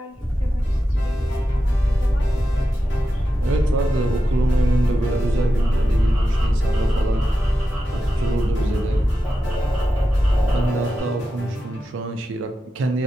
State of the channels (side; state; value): both; normal; correlation 0.90